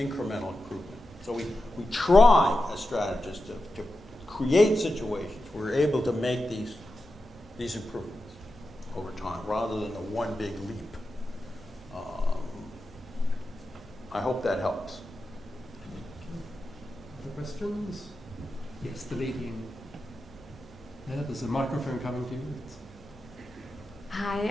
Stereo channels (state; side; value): noise; left; hum, 28 dB below the sound